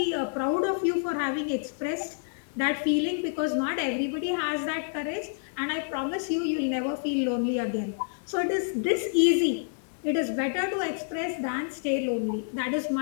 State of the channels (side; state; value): right; silent; 59 dB below the other